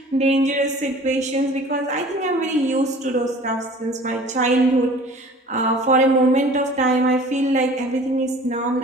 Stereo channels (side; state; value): both; normal; correlation 0.46